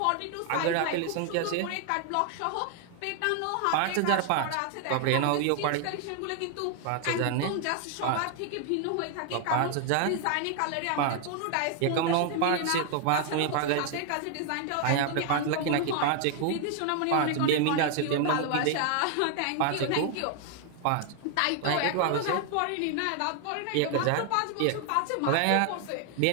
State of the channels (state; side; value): different; both; correlation 0.00